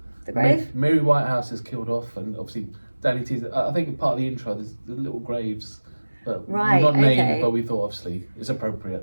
the grave? Mary Whitehouse is killed off, and obviously Danny T's, I think part of the intro, there's the little graves but Right, not named, okay. but we thought obviously it's appropriate.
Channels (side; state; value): both; inverted; correlation -1.00